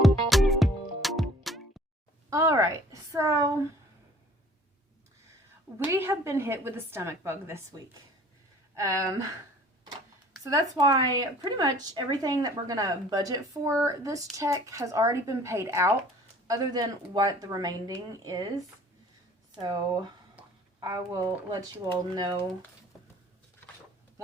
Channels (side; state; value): both; normal; correlation 0.51